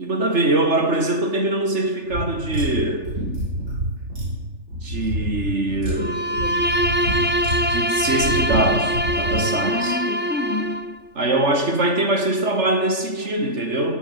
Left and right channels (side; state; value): left; late; 3.4 ms